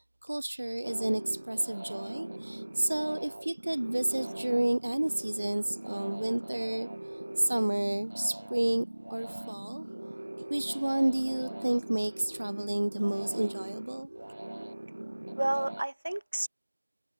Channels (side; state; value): both; inverted; correlation -1.00